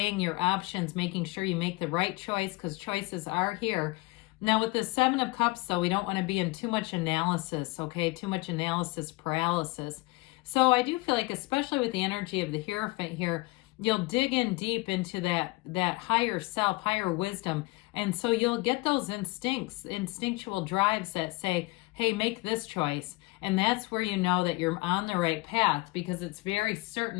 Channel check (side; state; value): right; quieter; 23.4 dB